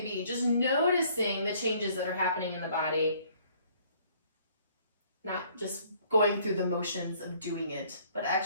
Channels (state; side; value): inverted; both; correlation -0.60